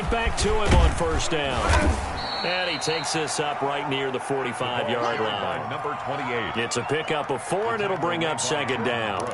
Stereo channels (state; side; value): identical; both; correlation 1.00